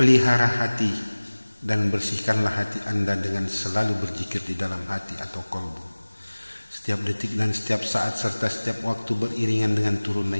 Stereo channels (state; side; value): inverted; both; correlation -1.00